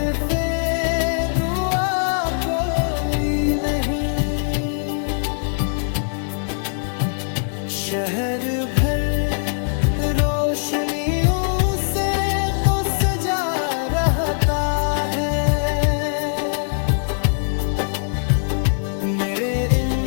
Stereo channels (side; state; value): right; silent; 65 dB below the other